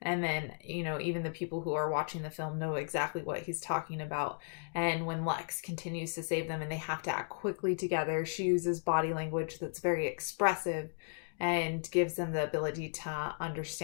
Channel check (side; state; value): right; silent; digital silence